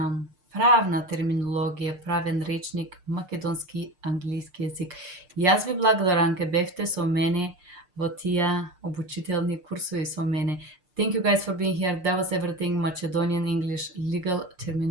правна терминологија, правен речник, македонски, англиски јазик. Јас ви благодарам ке бевте со мене во тие обучителни курсови со мене. Thank you guys for being here. That was everything Macedonian English legal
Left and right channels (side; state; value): left; late; 6.6 ms